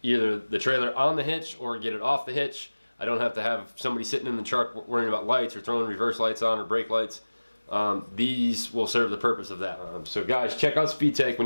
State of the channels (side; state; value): both; inverted; correlation -1.00